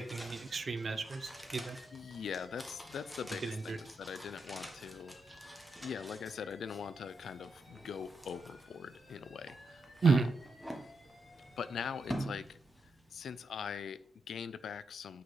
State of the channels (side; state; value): both; normal; correlation 0.83